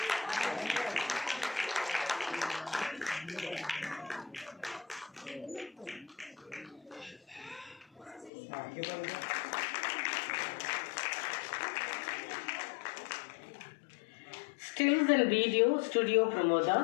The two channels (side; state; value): right; drops out; at 8.3 s